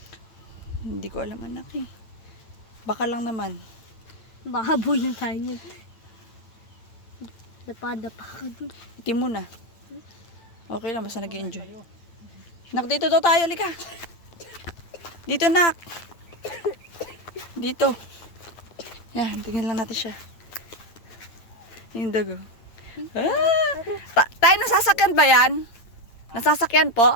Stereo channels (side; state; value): right; late; 9.0 ms